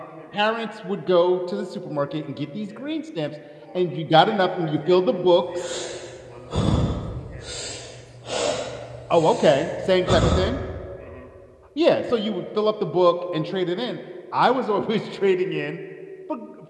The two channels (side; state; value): both; identical; correlation 1.00